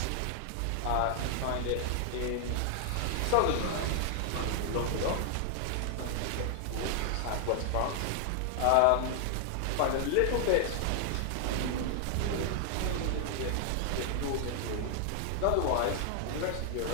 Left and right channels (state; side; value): different; both; correlation 0.00